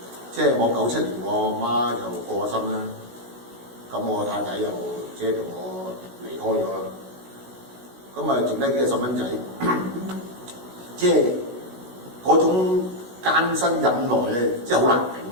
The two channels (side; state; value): left; late; 16 ms